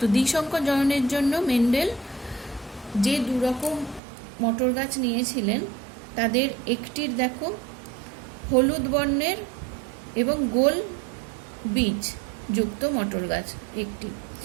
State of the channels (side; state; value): left; drops out; at 4.0 s